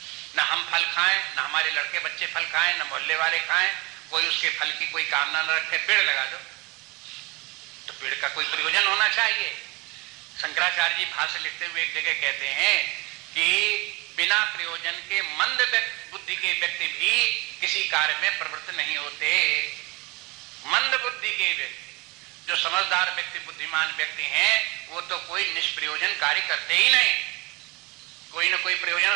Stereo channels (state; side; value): quieter; left; 25.3 dB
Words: ना हम फल खाएं, ना हमारे लड़के बच्चे फल खाएं, ना मोहल्ले वाले खाएं, कोई उसके फल की कोई कामना न रखे, पेड़ लगा दो। तो पेड़ का कोई प्रयोजन होना चाहिए। शंकराचार्य जी भाष्य लिखते हुए एक जगह कहते हैं कि बिना प्रयोजन के मंद बुद्धि के व्यक्ति भी किसी कार्य में प्रवृत्त नहीं होते। मंद बुद्धि के व्यक्ति, जो समझदार व्यक्ति, बुद्धिमान व्यक्ति हैं, वो तो कोई निष्प्रयोजन कार्य करते ही नहीं, कोई ना कोई प्रयोजन